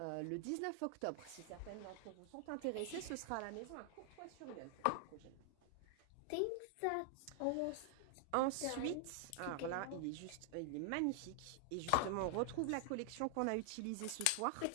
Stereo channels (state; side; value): different; both; correlation 0.00